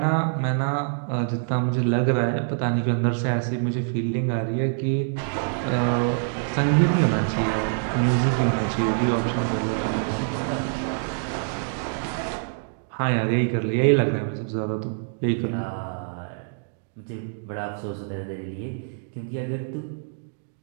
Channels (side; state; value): left; silent; digital silence